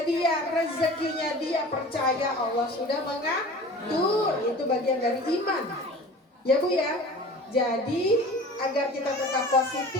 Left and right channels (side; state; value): both; normal; correlation 0.40